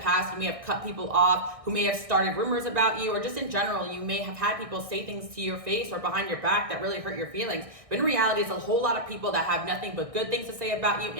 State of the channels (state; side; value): late; left; 1.6 ms